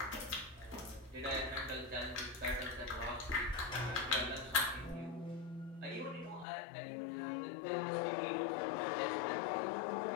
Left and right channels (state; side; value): drops out; right; at 6.5 s